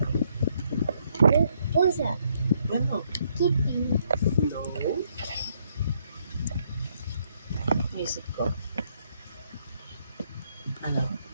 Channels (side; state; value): both; inverted; correlation -0.72